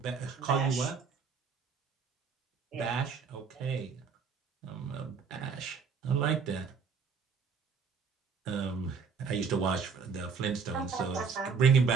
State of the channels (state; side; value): quieter; left; 5.7 dB